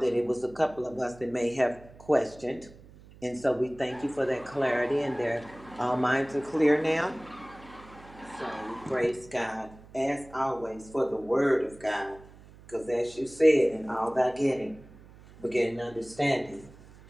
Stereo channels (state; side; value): noise; right; hum, 21 dB below the sound